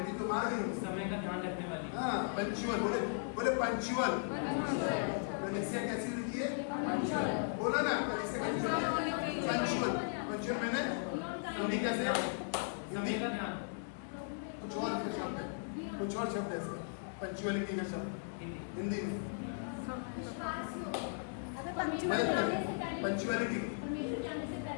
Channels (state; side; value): silent; right; digital silence